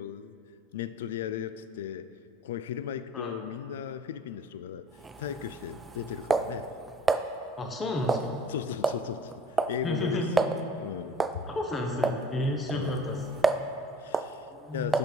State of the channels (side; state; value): both; normal; correlation 0.49